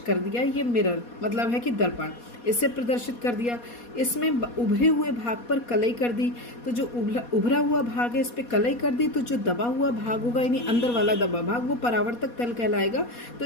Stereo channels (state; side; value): late; right; 4.2 ms